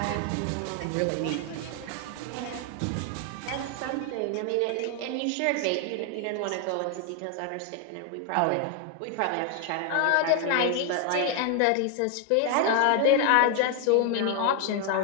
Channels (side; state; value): both; different; correlation 0.00